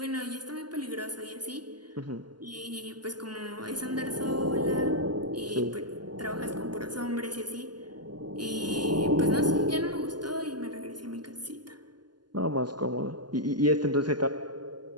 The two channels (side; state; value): left; late; 0.71 ms